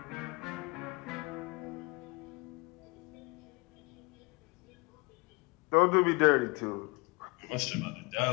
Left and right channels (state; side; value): quieter; right; 27.2 dB